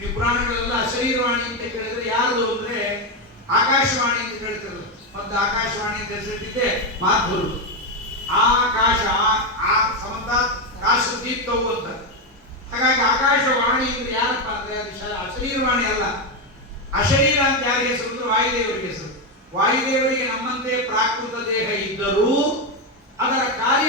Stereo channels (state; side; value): normal; both; correlation 0.08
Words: ಪುರಾಣಗಳೆಲ್ಲ ಅಶರೀರವಾಣಿ ಅಂತ ಕೇಳಿದ್ರೆ ಯಾರು ಅಂದ್ರೆ ಆಕಾಶವಾಣಿ ಅಂತ ಹೇಳ್ತಿರೋದು. ಮತ್ತು ಆಕಾಶವಾಣಿ ಅಂತ ಹೆಸರಿಟ್ಟಿದ್ದೆ ಮಾಧುರು. ಆಕಾಶ ಆ ಸಮಂತ ಕಾಶ ದೀಪ್ತವು ಅಂತ. ಹಾಗಾಗಿ ಆಕಾಶವಾಣಿ ಅಂದ್ರೆ ಯಾರಪ್ಪ ಅಂದ್ರೆ ಅದು ಅಶರೀರವಾಣಿ ಅಲ್ಲ. ಅಶರೀರ ಅಂತ ಯಾರಿಗೆ ಹೆಸರು ಅಂದ್ರೆ ವಾಯುದೇವರಿಗೆ ಹೆಸರು. ವಾಯುದೇವರಿಗೆ ನಮ್ಮಂತೆ ಪ್ರಾಕೃತ ದೇಹ ಇದ್ದರೂ ಅದರ ಕಾರ್ಯ